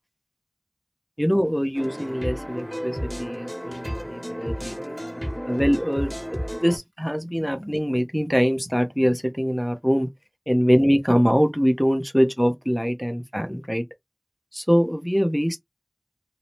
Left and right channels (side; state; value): both; identical; correlation 1.00